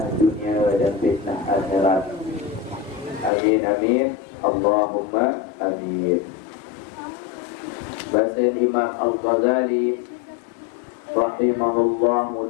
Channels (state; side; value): drops out; right; at 3.3 s